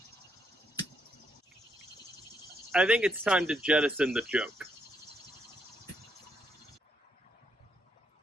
I think it's time to jettison the joke.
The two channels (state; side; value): normal; both; correlation 0.76